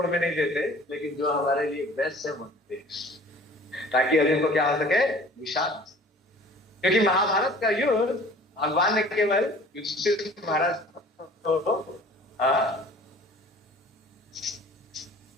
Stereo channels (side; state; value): both; normal; correlation 0.48